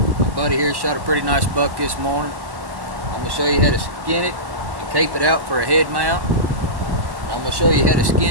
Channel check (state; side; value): late; left; 1.1 ms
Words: buddy here shot a pretty nice buck this morning. I'm gonna show you how to skin it and cape it out for a head mount. And I'm gonna show you how to